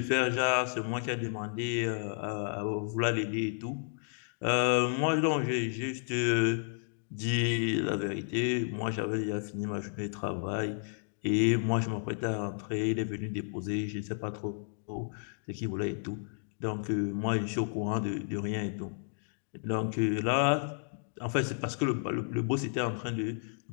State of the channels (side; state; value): right; silent; digital silence